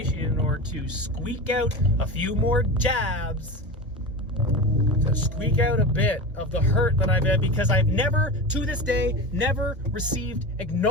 or to squeak out a few more jabs, to squeak out a bit of the hurt that I've had, because I've never, to this day, never received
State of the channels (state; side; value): normal; both; correlation 0.26